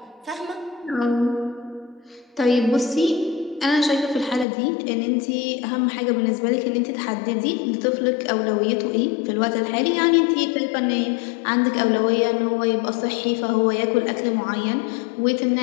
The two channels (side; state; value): right; drops out; at 4.5 s